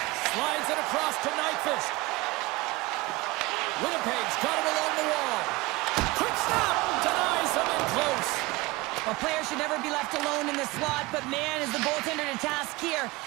Slides it across to Nyquist. Winnipeg's got it along the wall. Quick stop! Denies him in close. A player should never be left alone in the slot, but man, is the goaltender to task here.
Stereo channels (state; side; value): quieter; left; 22.0 dB